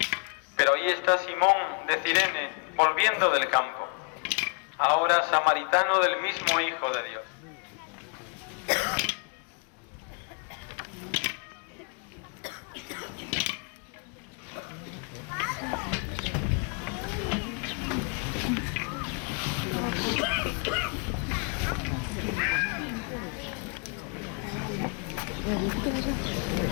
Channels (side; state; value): right; quieter; 36.8 dB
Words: Pero ahí está Simón de Cirene, volviendo del campo, ahora samaritano del mismo Hijo de Dios.